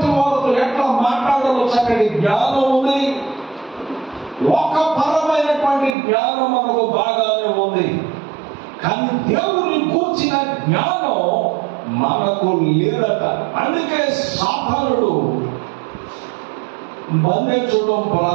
వారితో ఎట్లా మాట్లాడాలో చక్కటి జ్ఞానం ఉంది, లోకపరమైనటువంటి జ్ఞానం మనకు బాగానే ఉంది. కానీ దేవుని కూర్చిన జ్ఞానం మనకు లేదట. అందుకే సాతానుడు బంధించడం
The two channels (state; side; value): drops out; left; at 6.0 s